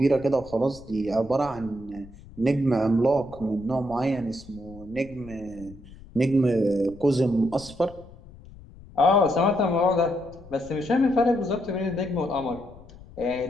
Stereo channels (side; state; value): left; noise; rumble, 19 dB below the sound